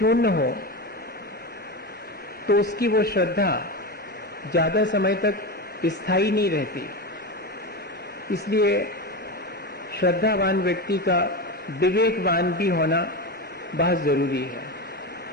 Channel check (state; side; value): normal; both; correlation 0.20